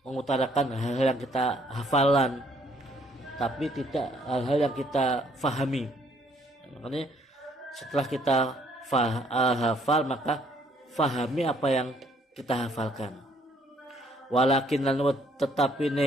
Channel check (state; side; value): normal; both; correlation 0.65